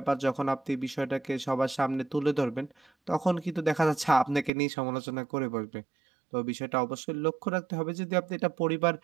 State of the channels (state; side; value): drops out; left; at 4.5 s